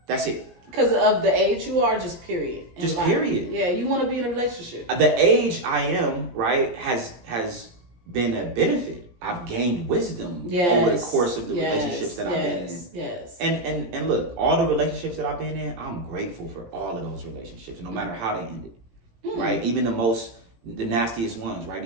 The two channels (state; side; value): late; left; 17 ms